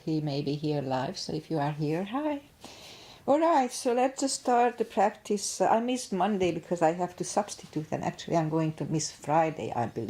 may be here live, so if you are here, hi. Alright, so let's just start the practice. I missed Monday because I have to substitute, and actually I'm going to miss Friday, I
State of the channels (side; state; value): both; identical; correlation 1.00